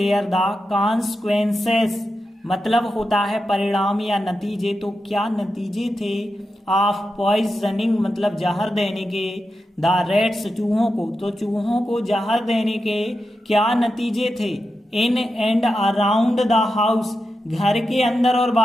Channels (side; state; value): both; normal; correlation 0.89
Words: द कॉन्सिक्वेंसेस मतलब होता है परिणाम या नतीजे, तो क्या नतीजे थे, ऑफ पॉइजनिंग मतलब जहर देने के, द रैट्स चूहों को, तो चूहों को जहर देने के क्या नतीजे थे, इन एंड अराउंड द हाउस घर के अंदर और